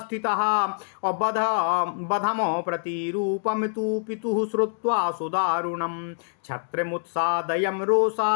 बधमो प्रतिरूपं तु पितुः श्रुत्वा सुदारुणं। छत्रमुत्सादयं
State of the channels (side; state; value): right; silent; digital silence